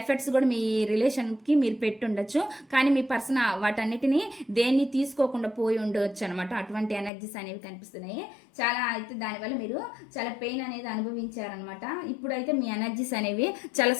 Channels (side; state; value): right; drops out; at 7.1 s